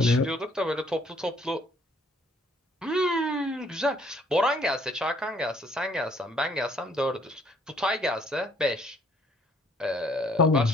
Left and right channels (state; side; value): normal; both; correlation 0.63